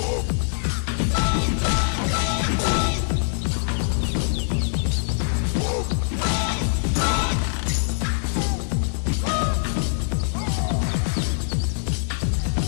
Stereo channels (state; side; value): silent; right; digital silence